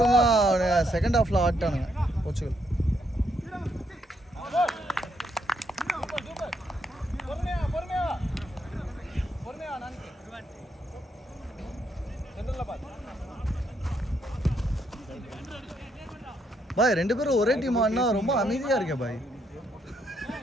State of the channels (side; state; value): both; normal; correlation 0.75